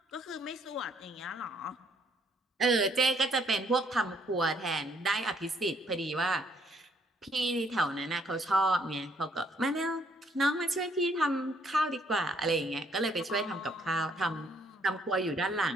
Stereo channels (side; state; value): both; normal; correlation 0.67